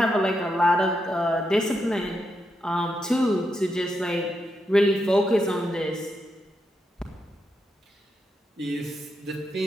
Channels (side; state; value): both; normal; correlation 0.83